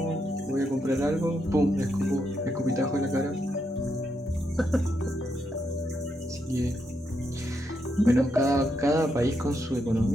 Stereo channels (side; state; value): both; normal; correlation 0.80